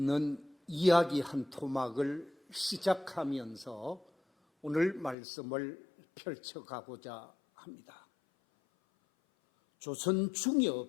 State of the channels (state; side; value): drops out; right; at 5.2 s